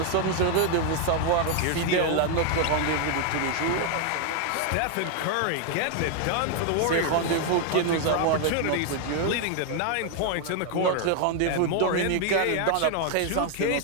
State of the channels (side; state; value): both; different; correlation 0.01